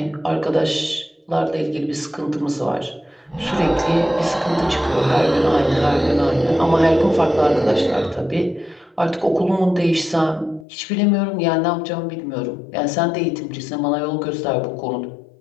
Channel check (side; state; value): right; drops out; at 10.7 s